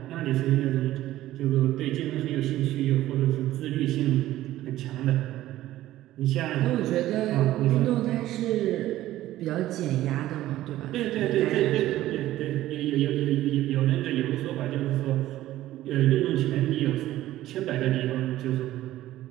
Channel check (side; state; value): left; quieter; 14.7 dB